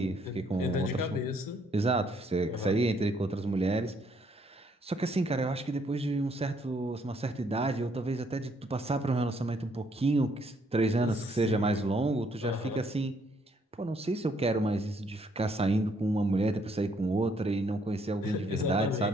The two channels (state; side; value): normal; both; correlation 0.69